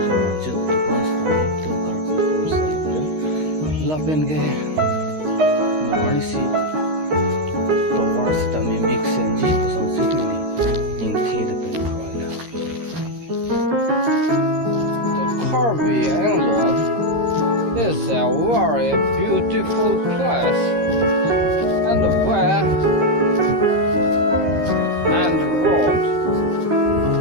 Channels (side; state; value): left; late; 13 ms